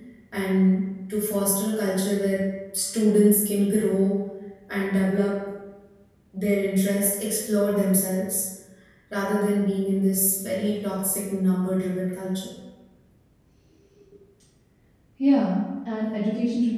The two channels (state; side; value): identical; both; correlation 1.00